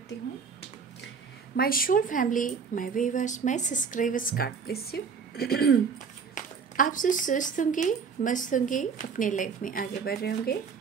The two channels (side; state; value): left; quieter; 5.9 dB